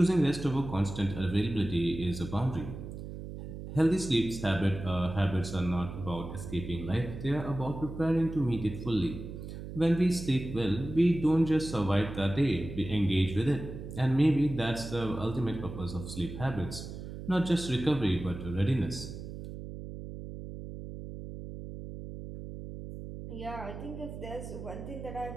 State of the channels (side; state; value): right; noise; hum, 10 dB below the sound